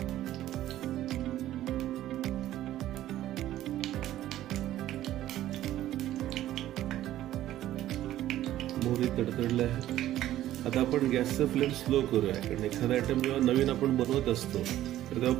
मोहरी तडतडले आहे. आता आपण गॅसचा फ्लेम स्लो करूया, कारण एखादा आयटम जेव्हा नवीन आपण बनवत असतो तर तेव्हा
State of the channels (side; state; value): left; quieter; 13.4 dB